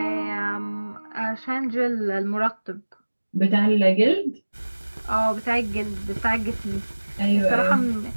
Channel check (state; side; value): inverted; both; correlation -1.00